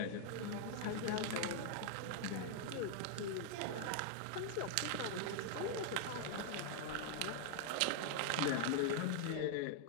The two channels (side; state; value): both; different; correlation 0.00